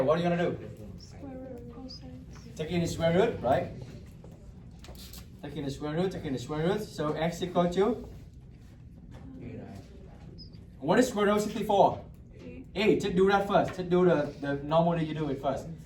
are you gonna do? Square root of cosine. Taking the square root, right? Taking the square root. So x equal to? What is square root of 64? 8. Just do that first. Just do the normally you do it first.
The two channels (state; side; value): identical; both; correlation 1.00